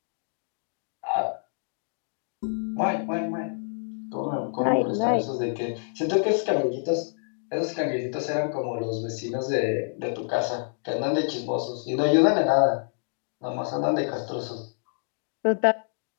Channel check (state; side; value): silent; right; digital silence